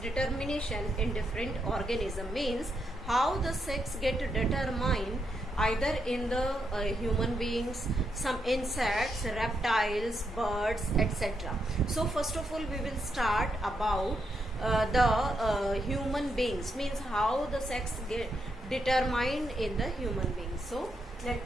in different organisms. Means how the sex get determined either in the human beings, some insects, reptiles, birds, etc. So first of all, we will start about the human beings. Means how the sex get determined in the human beings. So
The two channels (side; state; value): both; normal; correlation 0.81